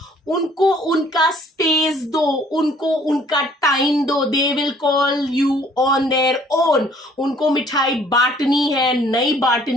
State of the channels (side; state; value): both; normal; correlation 0.58